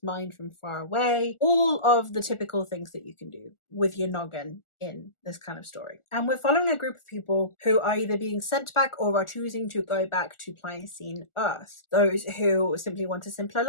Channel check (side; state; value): right; late; 1.4 ms